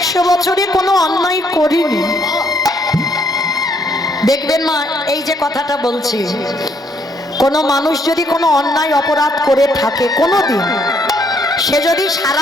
বছরে কোনো অন্যায় করিনি। দেখবেন মা, এই যে কথাটা বলছি, কোনো মানুষ যদি কোনো অন্যায় অপরাধ করে থাকে কোনোদিন, সে যদি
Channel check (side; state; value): both; normal; correlation 0.69